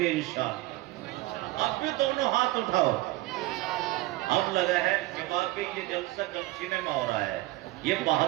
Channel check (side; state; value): left; quieter; 18.8 dB